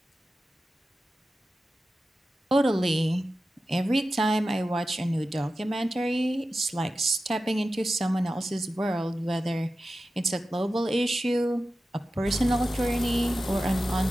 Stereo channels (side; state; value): both; normal; correlation 0.93